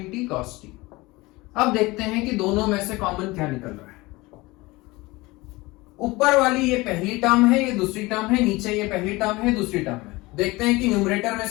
t cos t। अब देखते हैं कि दोनों में से कॉमन क्या निकल रहा है। ऊपर वाली ये पहली टर्म है, ये दूसरी टर्म है, नीचे ये पहली टर्म है, दूसरी टर्म है। देखते हैं कि न्यूमरेटर में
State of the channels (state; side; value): quieter; right; 21.8 dB